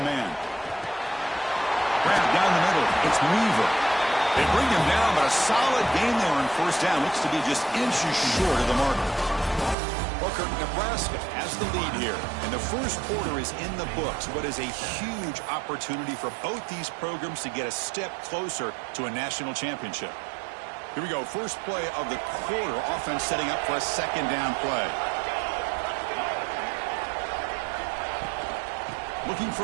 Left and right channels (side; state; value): left; drops out; at 9.8 s